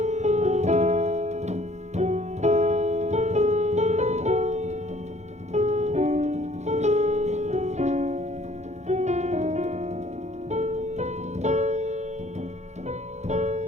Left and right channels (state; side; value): late; left; 0.33 ms